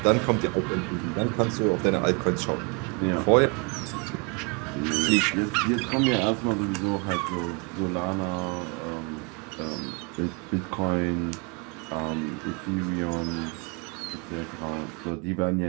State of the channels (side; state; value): left; quieter; 33.2 dB